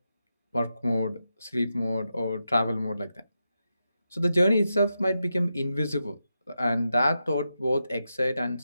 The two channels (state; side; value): inverted; both; correlation -0.87